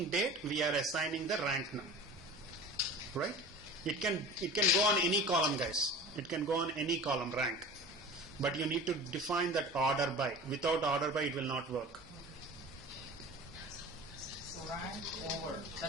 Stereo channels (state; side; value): normal; both; correlation 0.37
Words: date, we are assigning the rank now. Right? It can go on any column, guys. It can go on any column, rank. But you need to define that order by. Without order by, it will not work. So rank over.